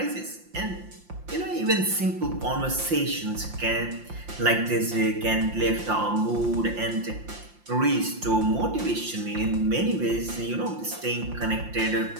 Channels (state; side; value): late; left; 5.7 ms